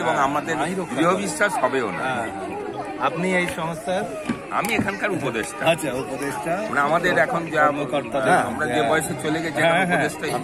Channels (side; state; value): both; identical; correlation 1.00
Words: এবং আমাদের দৃঢ় বিশ্বাস হবেও না। আপনি এই সংস্থার? আমি এখানকার উপদেষ্টা। আচ্ছা, উপদেষ্টা মানে আমাদের এখন যা আমরা যে বয়সে চলে গেছি,